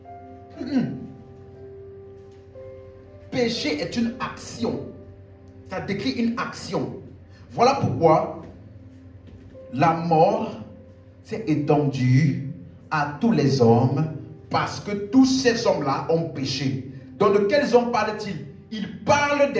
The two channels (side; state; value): both; identical; correlation 1.00